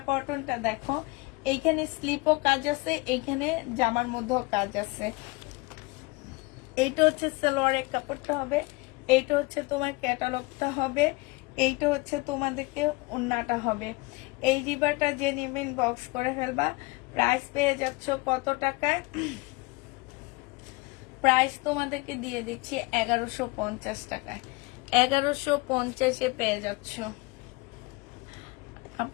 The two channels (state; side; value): quieter; right; 25.2 dB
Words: কটনটা দেখো, এইখানে স্লিপও কাজ আছে, এইখানে জামার মধ্যেও কাজ আছে। এইটা হচ্ছে সালোয়ারের কাপড়টা হবে, এইটা হচ্ছে তোমার ক্যাটালগটা হবে, এইটা হচ্ছে তোমাদেরকে ওন্নাটা হবে। এই রিবাটা যে নেবেন বক্স করে ফেলবা। প্রাইস পেয়ে যাচ্ছ কত টাকায়? প্রাইস তোমাদেরকে দিয়ে দিচ্ছি 1150 টাকায়। 1150 পেয়ে যাচ্ছ।